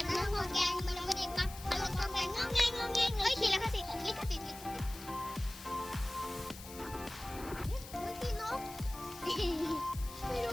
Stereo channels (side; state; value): left; noise; hiss, 14 dB below the sound